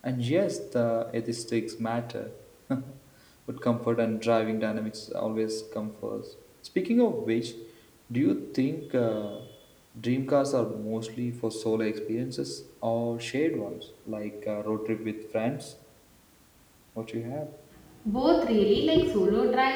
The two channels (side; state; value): both; identical; correlation 1.00